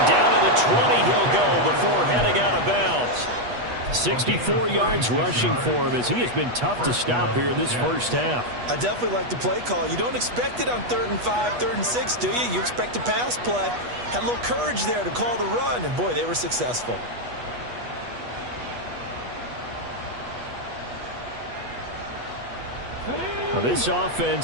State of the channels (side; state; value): left; late; 8.2 ms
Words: down to the 20 he'll go before heading out of bounds. 64 yards rushing for him as he has been tough to stop here this 1st half. I definitely like the play call. You don't expect it on 3rd and 5, 3rd and 6, do you? You expect a pass play. Had a little courage there to call the run, and boy, they were successful. Well, This